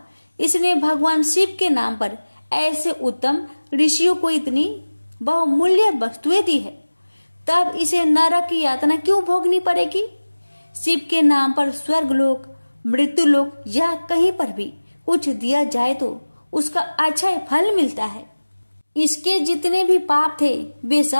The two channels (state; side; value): inverted; both; correlation -1.00